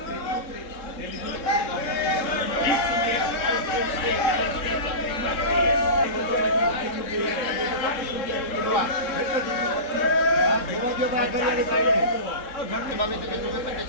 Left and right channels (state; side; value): late; right; 3.7 ms